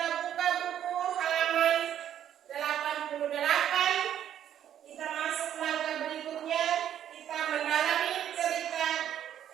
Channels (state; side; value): quieter; left; 10.4 dB